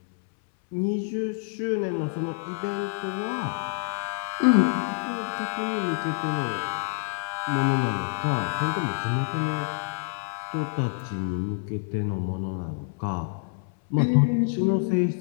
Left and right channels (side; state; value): right; silent; 60 dB below the other